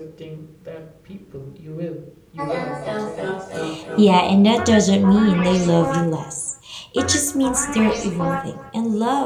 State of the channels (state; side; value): identical; both; correlation 1.00